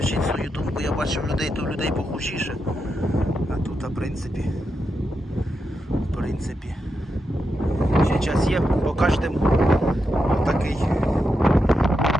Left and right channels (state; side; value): normal; both; correlation 0.86